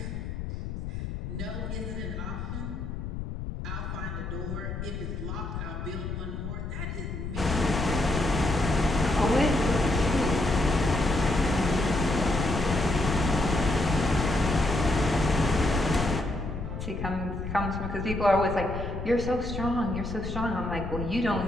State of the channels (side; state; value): left; noise; rumble, 6 dB below the sound